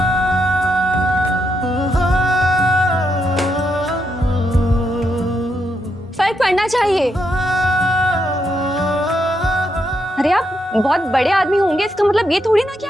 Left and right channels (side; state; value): both; normal; correlation 0.81